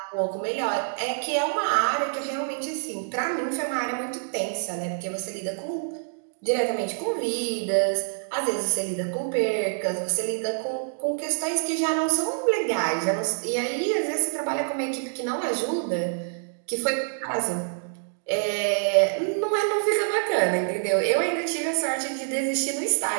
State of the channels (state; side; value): silent; left; digital silence